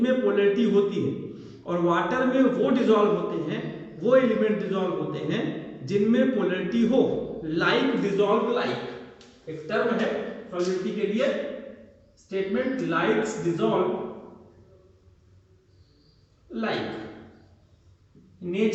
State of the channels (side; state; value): both; identical; correlation 1.00